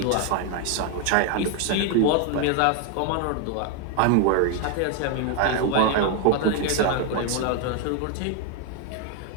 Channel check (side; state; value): both; different; correlation 0.01